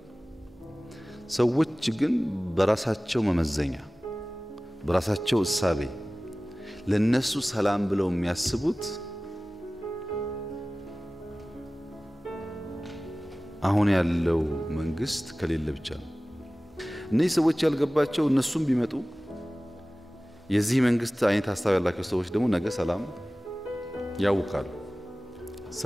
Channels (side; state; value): both; normal; correlation 0.97